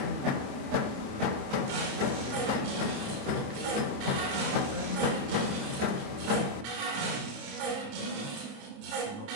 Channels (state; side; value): late; left; 28 ms